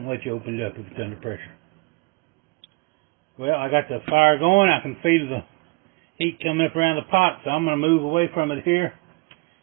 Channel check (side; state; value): left; quieter; 27.4 dB